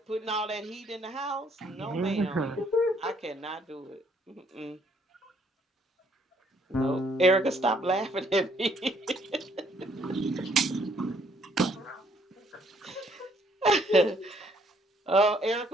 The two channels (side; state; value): both; normal; correlation 0.66